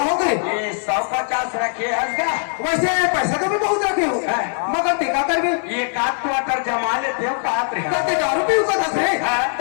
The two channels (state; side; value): silent; right; digital silence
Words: ये 150 रखे हंसगा। वैसे पैसा तो भी बहुत रखे हो मगर टेका कर भी ये काट क्वार्टर जमा लेते हो काट रहे कहते दारू पी का दस रे